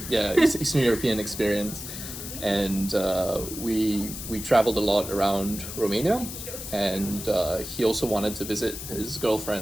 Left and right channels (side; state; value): left; noise; hiss, 9 dB below the sound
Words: Yeah, Eastern European experience, and we traveled a lot around Romania, and he also wanted to visit his